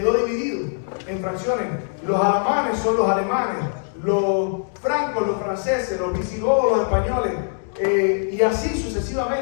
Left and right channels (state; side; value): silent; right; digital silence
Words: dividido en fracciones. Los alamanes son los alemanes, los francos, los franceses, los visigodos, los españoles, y así